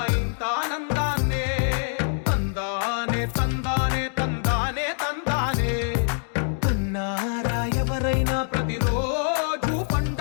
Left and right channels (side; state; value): right; silent; digital silence